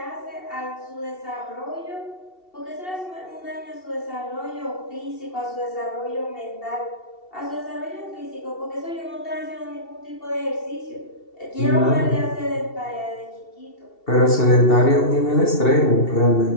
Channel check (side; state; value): right; late; 2.7 ms